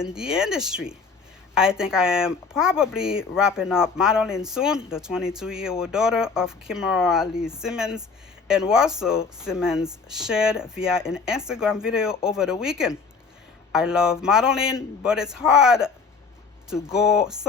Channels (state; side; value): quieter; right; 4.9 dB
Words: the industry. I think I am probably wrapping up modeling soon. The 22-year-old daughter of Kimora Lee Simmons and Russell Simmons shared via an Instagram video over the weekend. I love modeling, but it's hard to go